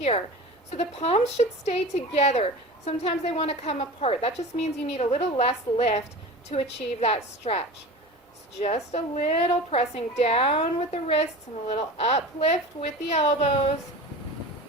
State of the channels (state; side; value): normal; both; correlation 0.34